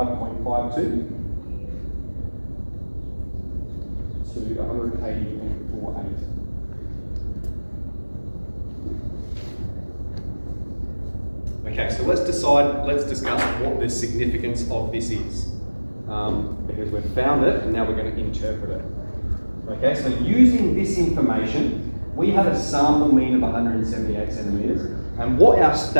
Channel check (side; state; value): both; inverted; correlation -1.00